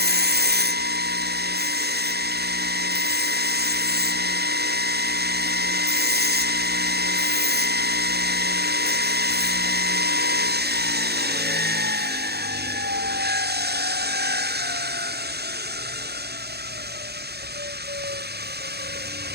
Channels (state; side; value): late; left; 0.47 ms